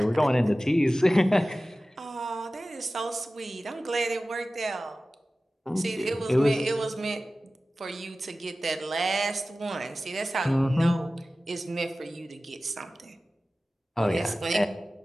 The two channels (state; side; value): normal; both; correlation 0.96